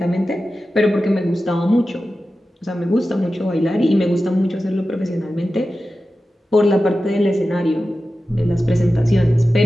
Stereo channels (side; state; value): both; normal; correlation 0.93